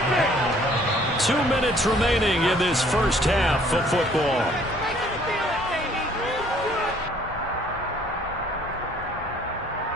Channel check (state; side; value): normal; both; correlation 0.59